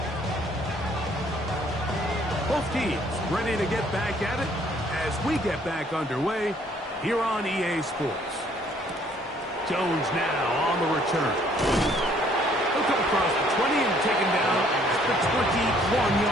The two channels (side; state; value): both; normal; correlation 0.62